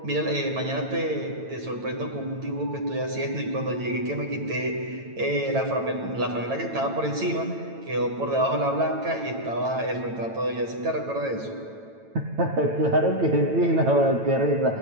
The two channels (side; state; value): left; late; 9.0 ms